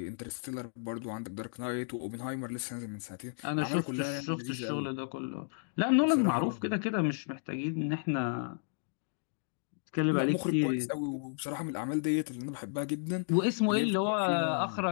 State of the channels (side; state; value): right; silent; digital silence